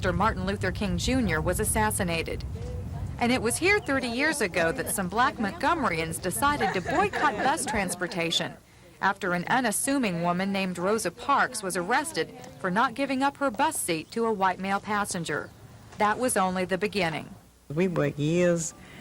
Martin Luther King Jr. was assassinated. And it was here 30 years ago that some black Montgomeryans decided to boycott bus transportation after an unassuming woman named Rosa Parks was arrested for not giving up her bus seat to a white male passenger. That was only the beginning. We worked years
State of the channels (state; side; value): identical; both; correlation 1.00